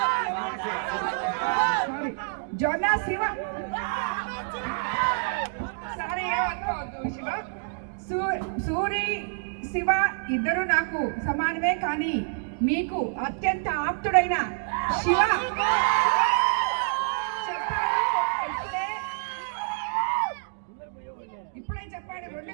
జొన్న శివ సారీ శివ సూరి శివ ఇద్దరు నాకు సమానమే, కానీ మీకు అత్యంత ఆప్తుడైన శివ ఇప్పుడే చెప్పాడు 2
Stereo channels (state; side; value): silent; left; digital silence